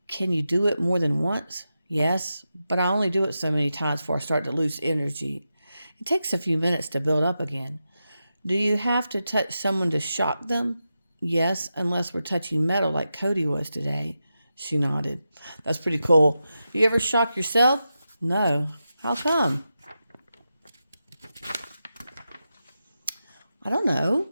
Can you do it more than once? Yes, but I only do it so many times before I start to lose energy. It takes a few minutes to build up again. Do you have to touch someone to shock them? Yes, unless we're touching metal like Cody was today. She nodded. That's pretty cool. Do you ever shock yourself? No. How come? I don't know.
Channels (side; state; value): both; inverted; correlation -0.90